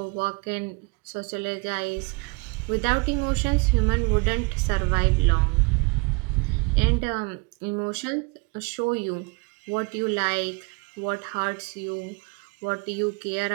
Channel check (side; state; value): left; quieter; 29.4 dB